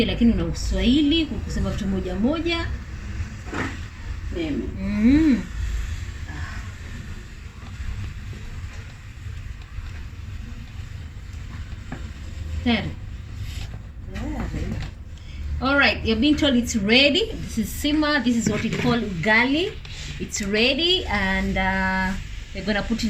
lakini una Uswahili kusema vitu moja. Mimi. Tayari. All right, you're being told it's ready. This is simmer. This is what we call ugali. It's ready, and we're gonna put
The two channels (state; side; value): identical; both; correlation 1.00